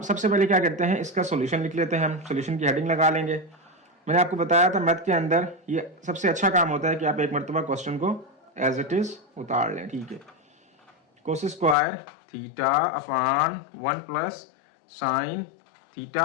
सबसे पहले क्या करते हैं, इसका सॉल्यूशन लिख लेते हैं, हम सॉल्यूशन की हेडिंग लगा लेंगे। मैंने आपको बताया था मैथ के अंदर ये सबसे अच्छा काम होता है कि आप एक मरतबा क्वेश्चन को एज इट इज उतार लें, ठीक है। Cos square theta upon 1 plus sine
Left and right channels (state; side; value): drops out; right; at 11.8 s